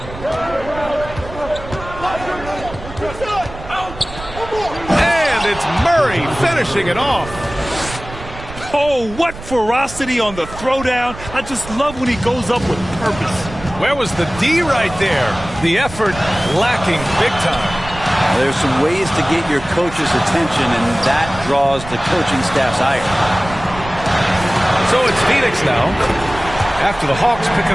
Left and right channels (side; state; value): right; noise; rumble, 13 dB below the sound